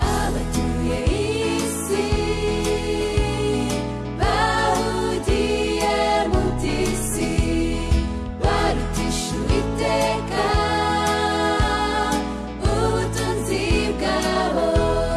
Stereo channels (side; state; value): both; identical; correlation 1.00